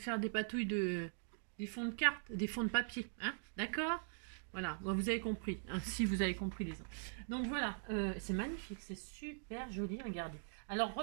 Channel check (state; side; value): silent; left; digital silence